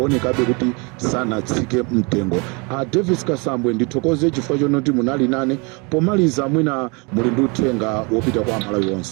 kuti sanatsike mtengo. Davis Kasambwe ndithokoze chifukwa chonoti munali nane. Pomaliza mwina muli ndi uthenga wopita kwa amalawi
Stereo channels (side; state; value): left; quieter; 30.3 dB